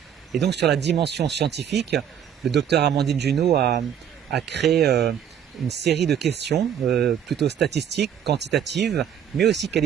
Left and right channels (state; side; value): quieter; left; 9.0 dB